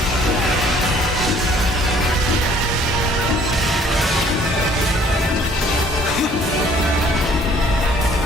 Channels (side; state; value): both; normal; correlation 0.58